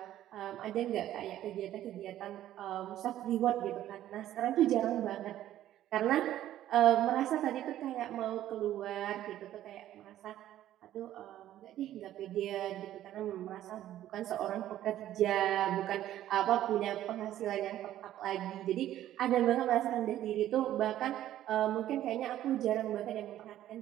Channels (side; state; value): left; quieter; 12.7 dB